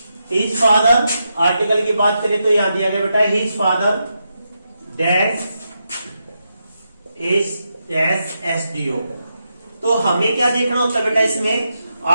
हिज फादर, आर्टिकल की बात करें तो यहां दिया गया बेटा, his father dash is dash SDO। तो हमें क्या देखना होता है बेटा इसमें,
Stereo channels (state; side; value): inverted; both; correlation -0.85